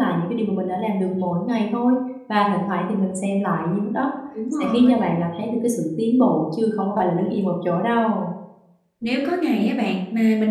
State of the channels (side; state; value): both; identical; correlation 1.00